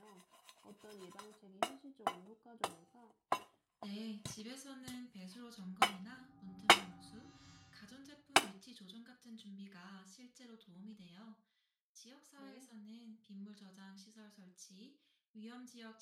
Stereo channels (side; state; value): both; identical; correlation 1.00